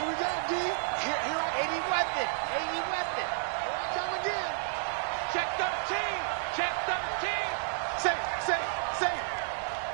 we go, D. Here, 80 weapon. 80 weapon. Come again. Check 13. Check 13. Safe.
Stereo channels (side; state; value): left; silent; digital silence